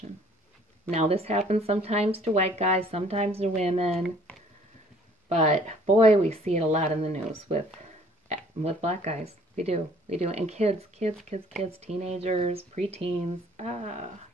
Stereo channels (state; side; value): normal; both; correlation 0.57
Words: Now, this happens sometimes to white guys, sometimes to women, but boy, we see it a lot in the news with black guys. We do, and kids, teenagers, preteens.